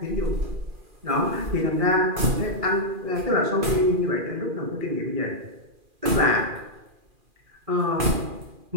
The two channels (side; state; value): left; late; 2.4 ms